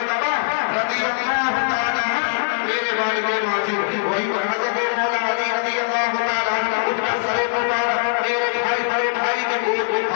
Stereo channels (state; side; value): silent; right; digital silence